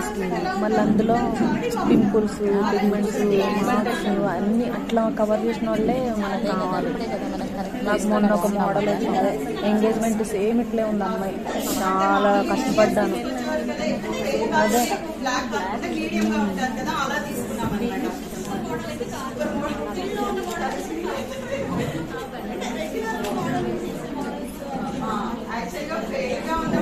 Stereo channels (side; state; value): both; identical; correlation 1.00